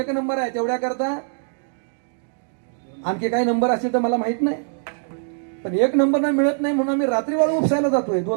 नंबर आहे, तेवढ्या करता आणखी काही नंबर असतील तर मला माहित नाही. पण एक नंबर ना मिळत नाही म्हणून आम्ही रात्री वाळू उपसायला जातोय.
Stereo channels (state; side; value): silent; left; 57 dB below the other